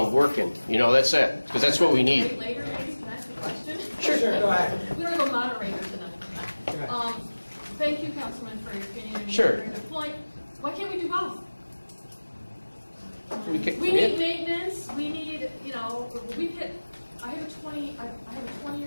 working. You know, that's it, because that's what we need. Later, maybe, can I ask a question? Sure, go ahead. We don't have a moderator tonight. Thank you, Councilman, for your opinion. And Sure. your point. Why can't we do both? We need maintenance. We need, you know, I have a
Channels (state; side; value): inverted; both; correlation -1.00